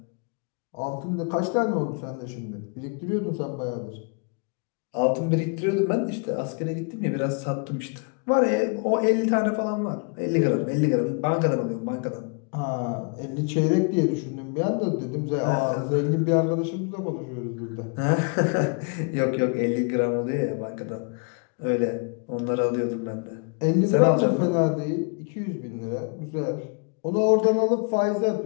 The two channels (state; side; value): quieter; right; 37.3 dB